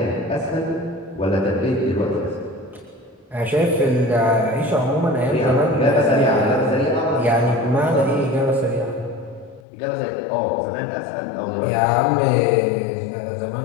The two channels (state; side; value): drops out; right; at 9.6 s